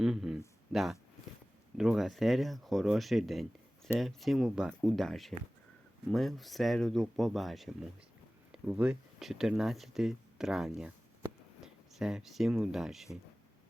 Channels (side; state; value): both; normal; correlation 0.98